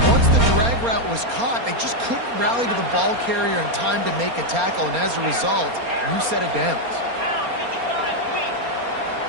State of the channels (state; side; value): late; left; 4.3 ms